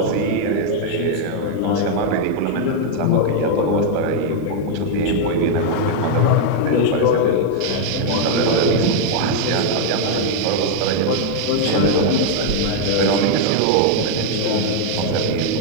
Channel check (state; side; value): different; both; correlation 0.00